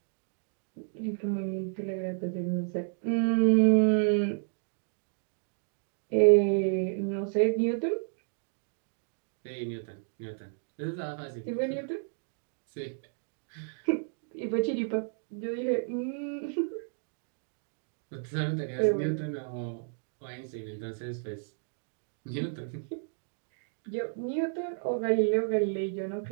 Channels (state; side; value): silent; left; digital silence